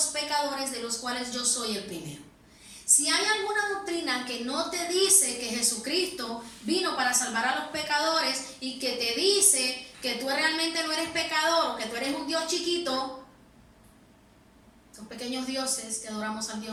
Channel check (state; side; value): identical; both; correlation 1.00